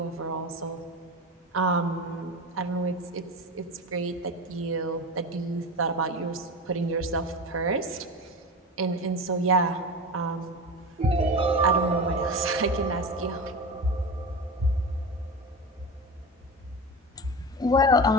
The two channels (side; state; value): both; normal; correlation 0.26